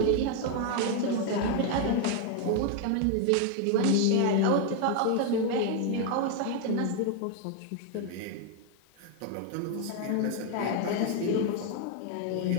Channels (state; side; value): different; both; correlation 0.00